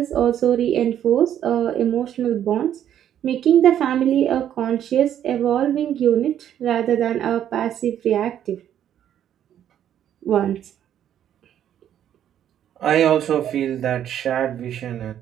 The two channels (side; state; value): left; quieter; 10.3 dB